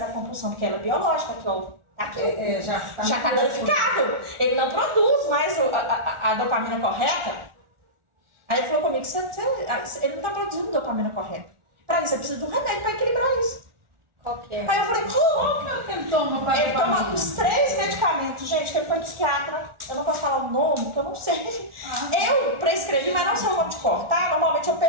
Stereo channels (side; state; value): left; late; 1.4 ms